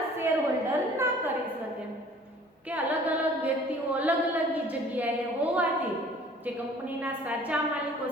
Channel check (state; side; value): normal; both; correlation 0.51